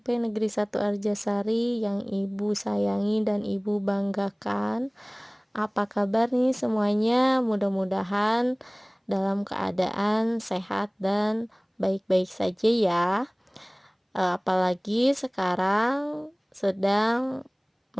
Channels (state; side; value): identical; both; correlation 1.00